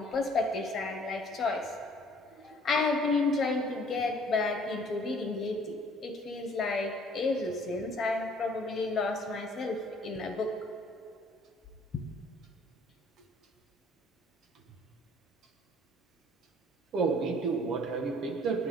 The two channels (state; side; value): normal; both; correlation 0.57